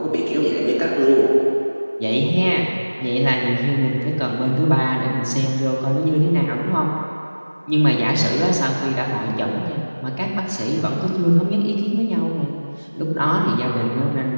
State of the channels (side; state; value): both; inverted; correlation -1.00